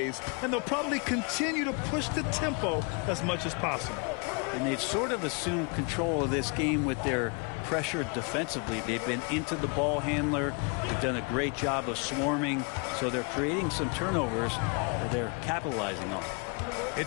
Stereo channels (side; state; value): right; quieter; 33.9 dB